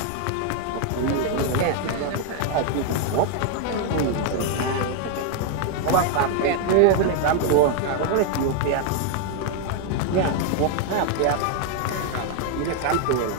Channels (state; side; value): different; both; correlation 0.00